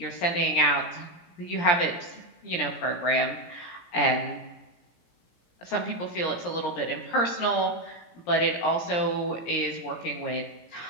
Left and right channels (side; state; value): right; late; 17 ms